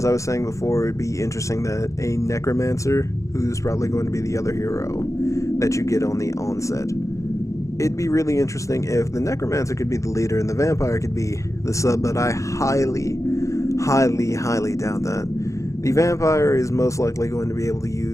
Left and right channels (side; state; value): right; late; 0.15 ms